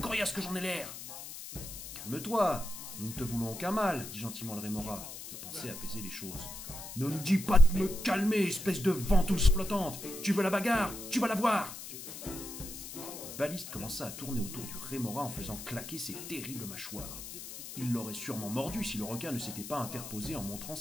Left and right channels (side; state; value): left; noise; hiss, 10 dB below the sound